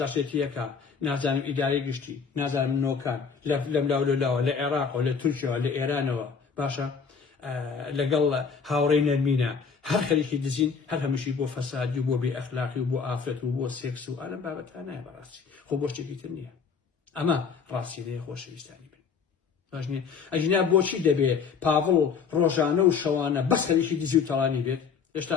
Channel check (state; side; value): quieter; right; 5.9 dB